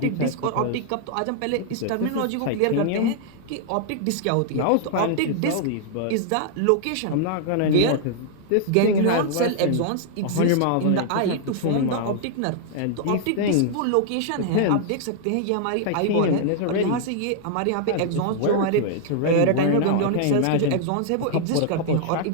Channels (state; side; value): different; both; correlation -0.01